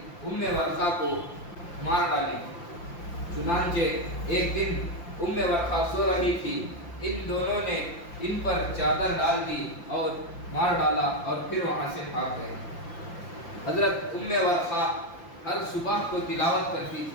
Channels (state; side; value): late; right; 5.8 ms